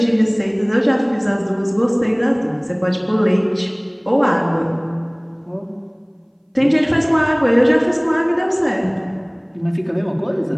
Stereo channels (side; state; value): both; identical; correlation 1.00